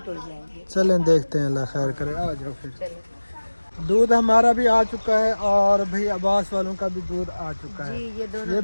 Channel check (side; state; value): both; inverted; correlation -1.00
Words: हो जाएंगे। चलें देखते हैं, अल्लाह खैर करे। आ जाओ फिर। चलो दूध हमारा भी आ चुका है और भाई अब्बास वालों का भी दूध आ चुका है। जी ये दोनों ये